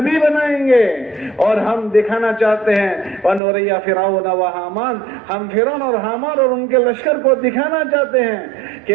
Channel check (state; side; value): drops out; left; at 3.4 s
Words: بنائیں گے. اور ہم دکھانا چاہتے ہیں وَنُرِيَ فِرْعَوْنَ وَحَامَانَ, ہم فرعون اور حامان اور ان کے لشکر کو دکھانا چاہتے ہیں